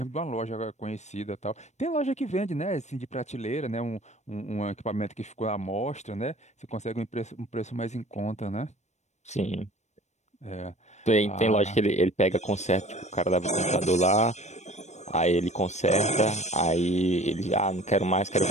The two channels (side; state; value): right; late; 0.33 ms